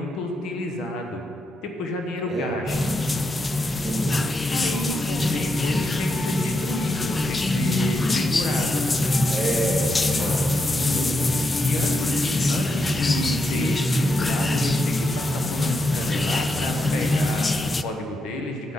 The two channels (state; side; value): normal; both; correlation 0.84